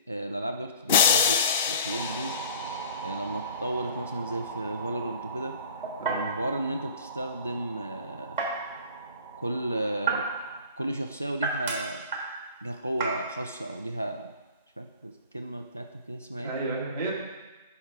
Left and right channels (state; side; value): inverted; both; correlation -0.46